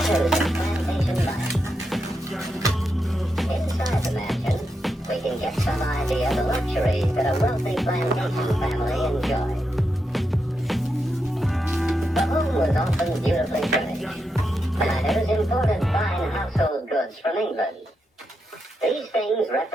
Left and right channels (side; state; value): both; normal; correlation 0.85